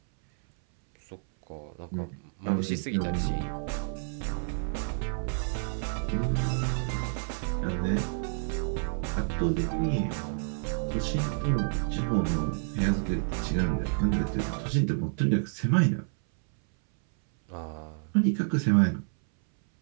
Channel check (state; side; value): silent; left; 58 dB below the other